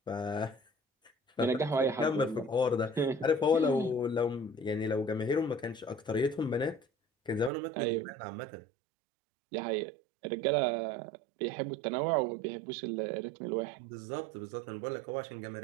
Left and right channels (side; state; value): left; drops out; at 7.5 s